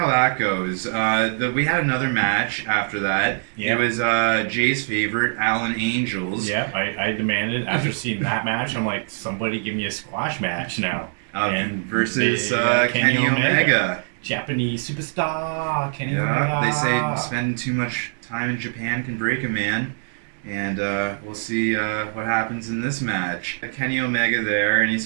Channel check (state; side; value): silent; left; digital silence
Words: that goes. We had another match after that. Yep. It was Jay's favorite, Allin Angels. Yeah, I demanded after seeing that match. I'm like, somebody give me a squash match now. And versus Kenny Omega. Japanese superstar Kenny Omega. They say Omega. spending too much time in Japan can break a man. And we'll see what happens in this match. Kenny Omega there, and he's